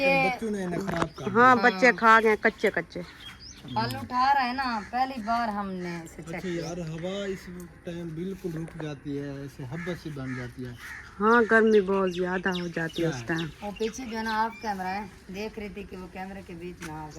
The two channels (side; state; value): both; identical; correlation 1.00